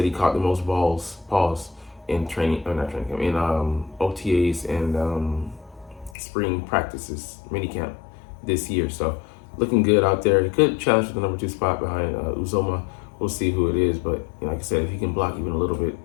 he caught the most balls in OTAs and spring practices, minicamp this year. So looking good out there. He could challenge for the #2 spot behind Uzoma. We'll see who it is, but like I said, if he can block even a little bit,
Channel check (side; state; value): right; drops out; at 6.2 s